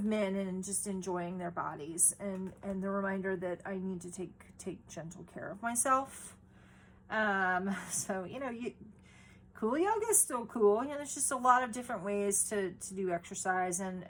and just enjoying their bodies, and the reminder that I need to take gentle care of myself. So, you know, cool yoga is still cool. You know, there's just a lot of different ways to do exercise,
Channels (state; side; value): identical; both; correlation 1.00